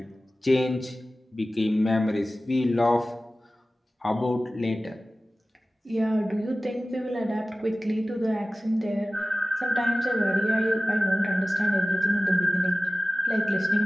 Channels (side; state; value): both; normal; correlation 0.96